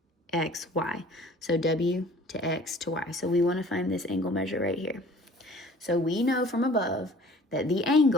X, Y. So W to X to Y. So we want to find this angle measure right here. So we know from above that the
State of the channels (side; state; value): both; normal; correlation 0.49